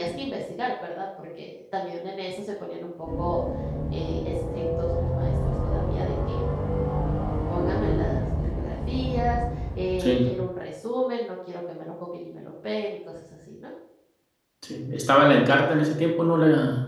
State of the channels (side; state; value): both; identical; correlation 1.00